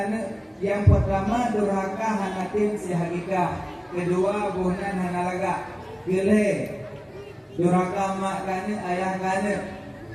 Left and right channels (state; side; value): identical; both; correlation 1.00